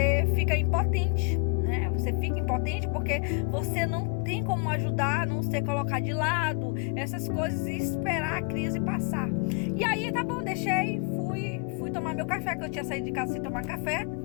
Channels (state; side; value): quieter; right; 34.9 dB